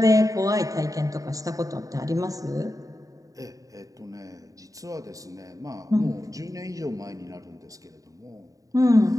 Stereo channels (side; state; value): left; late; 0.16 ms